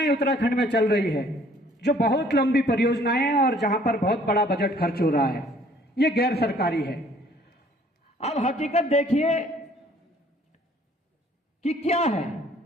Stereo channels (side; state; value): both; normal; correlation 0.58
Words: उत्तराखंड में चल रही है, जो बहुत लंबी परियोजनाएं हैं और जहां पर बहुत बड़ा बजट खर्च हो रहा है, ये गैर सरकारी है। अब हकीकत देखिए कि क्या है,